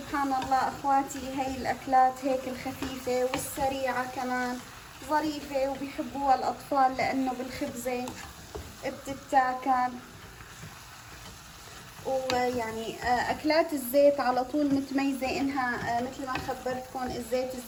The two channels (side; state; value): both; identical; correlation 1.00